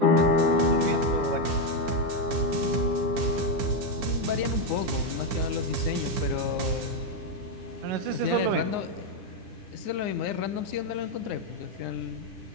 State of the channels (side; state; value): left; late; 10 ms